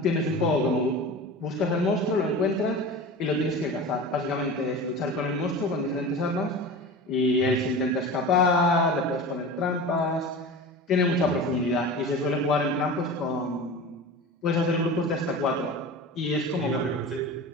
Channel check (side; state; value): both; normal; correlation 0.32